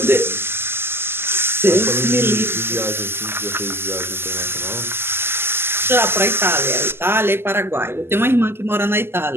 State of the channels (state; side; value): late; left; 0.11 ms